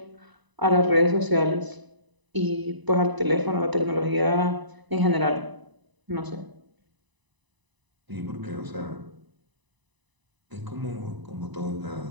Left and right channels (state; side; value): late; left; 1.0 ms